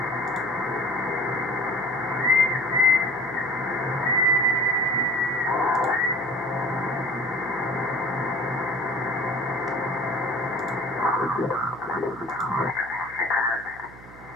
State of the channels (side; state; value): right; noise; hum, 20 dB below the sound